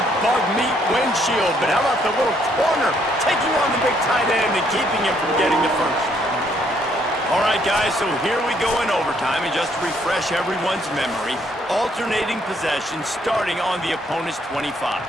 bug meat windshield, but how about the little corner taking on the big tight end and keeping him from getting the first? All right, guys, so here we go in overtime, and just to refresh everyone's memory, alternating possession starting on the opponent's 25.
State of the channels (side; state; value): both; normal; correlation 0.69